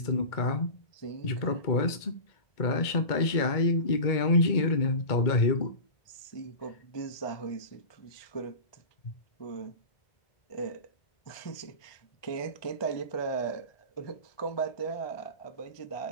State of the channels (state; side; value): late; right; 2.2 ms